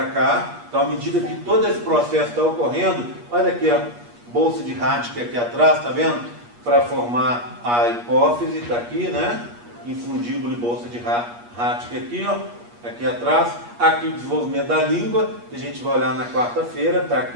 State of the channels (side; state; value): left; late; 8.4 ms